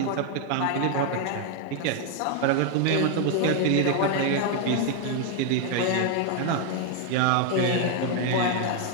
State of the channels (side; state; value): both; different; correlation 0.00